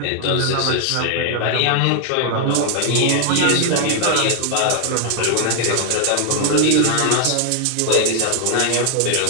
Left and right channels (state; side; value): different; both; correlation 0.00